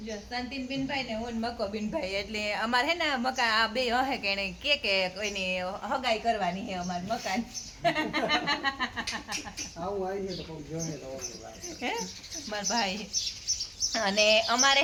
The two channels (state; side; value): identical; both; correlation 1.00